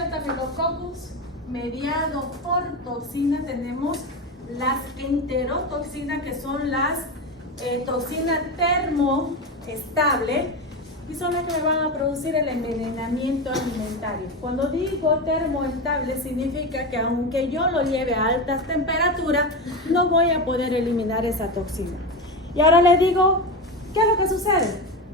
Staphylococcus mediado por toxinas, tenemos las enterotoxinas, que son las toxinas termoestables, y son las que me van a producir el envenenamiento alimentario. Cuando digo termoestable, significa que aunque yo lo lleve a altas temperaturas, no voy a poder eliminar esa toxina. Y ahora les digo, ¿qué es lo que sucede?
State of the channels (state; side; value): normal; both; correlation 0.19